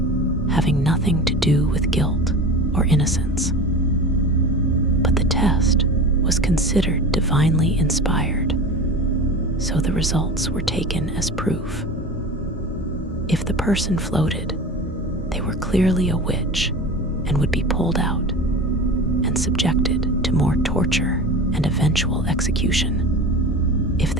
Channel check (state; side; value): normal; both; correlation 0.32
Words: having nothing to do with guilt or innocence. But the test was considered divinely inspired, so the results were taken as proof. If the person floated, they were clearly a witch and would be pulled out and subjected to more torture and eventual execution. If